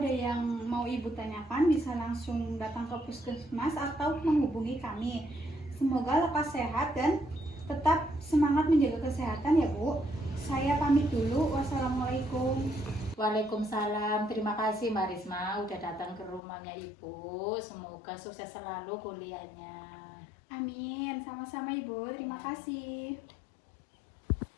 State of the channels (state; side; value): drops out; right; at 16.4 s